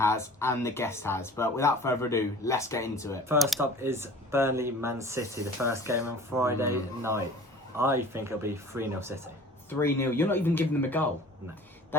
and the guest has. But without further ado, let's get into it. First up is Burnley-Man City, the first game on Friday night. I think it'll be 3-0 City. 3-0. You're not even giving them a goal. No.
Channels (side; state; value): both; normal; correlation 0.44